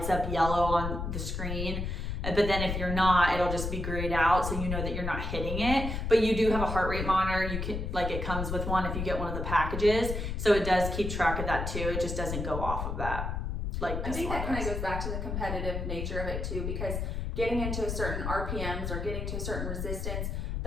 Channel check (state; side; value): noise; left; rumble, 3 dB below the sound